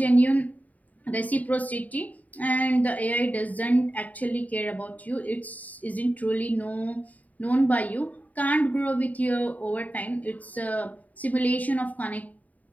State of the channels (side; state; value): right; late; 0.074 ms